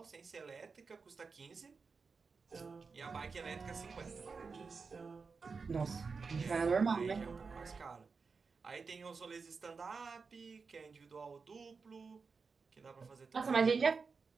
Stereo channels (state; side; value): quieter; left; 4.9 dB